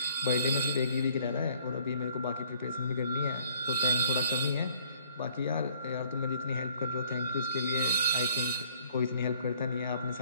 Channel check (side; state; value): both; inverted; correlation -0.60